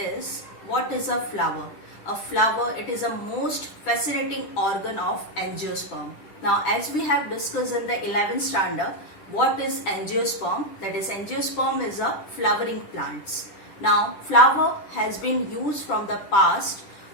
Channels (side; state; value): right; late; 10 ms